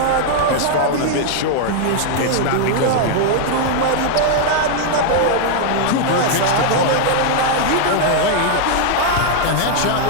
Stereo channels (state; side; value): different; both; correlation 0.00